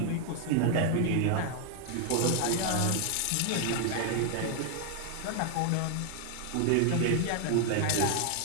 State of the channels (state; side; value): different; both; correlation 0.00